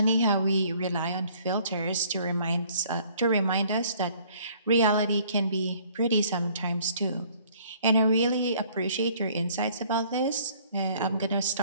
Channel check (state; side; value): inverted; both; correlation -0.58